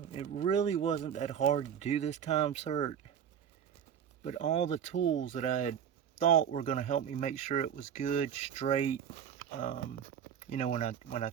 It really wasn't that hard to do this time sert, but all the tools that I had thought were going to help me make sure it was good, straight, when I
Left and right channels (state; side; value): quieter; left; 8.5 dB